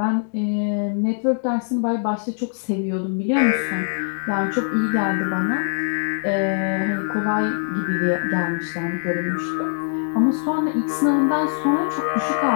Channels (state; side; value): silent; right; digital silence